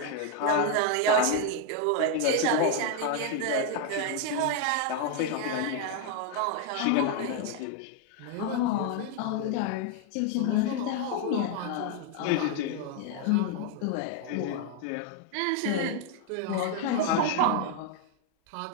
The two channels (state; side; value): different; both; correlation 0.01